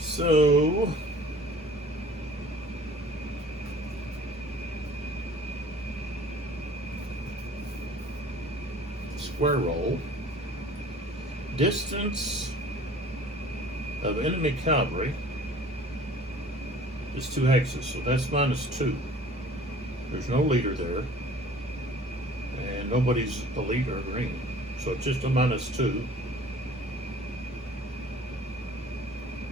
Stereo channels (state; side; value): normal; both; correlation 0.49